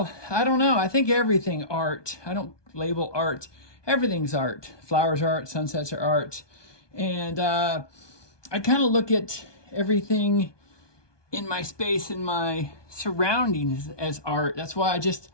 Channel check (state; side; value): late; right; 1.2 ms